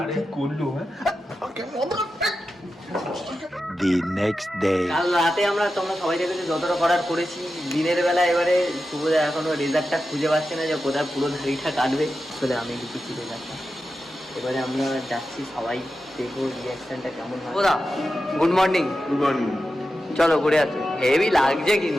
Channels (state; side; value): normal; both; correlation 0.91